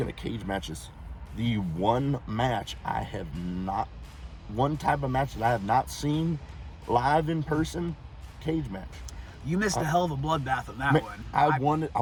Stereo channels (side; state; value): both; identical; correlation 1.00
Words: of cage matches, the one type of match that I have not seen live in person, cage match. You missed a hell of a bloodbath on that one. I